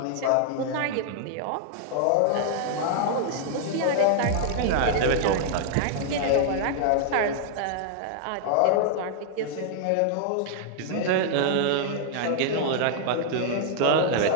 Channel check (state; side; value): different; both; correlation -0.01